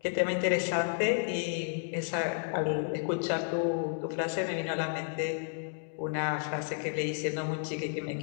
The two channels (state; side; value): silent; right; digital silence